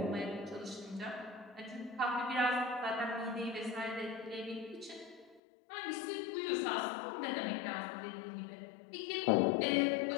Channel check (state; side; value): drops out; right; at 5.4 s